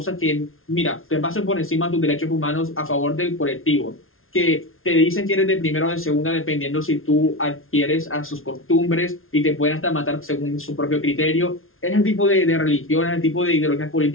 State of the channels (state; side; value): late; right; 0.61 ms